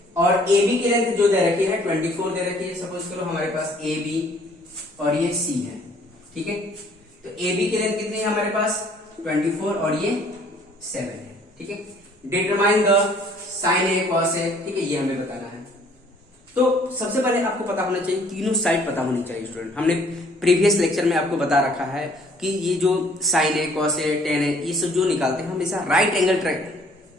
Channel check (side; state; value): both; normal; correlation 0.58